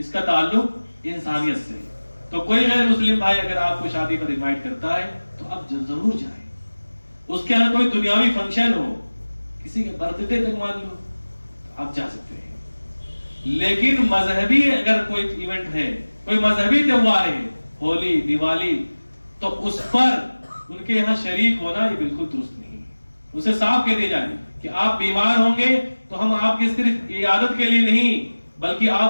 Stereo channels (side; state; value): both; inverted; correlation -1.00